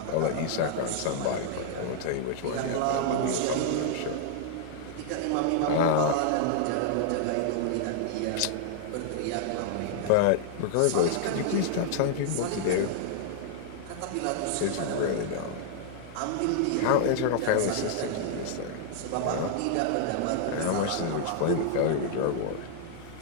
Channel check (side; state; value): both; different; correlation 0.00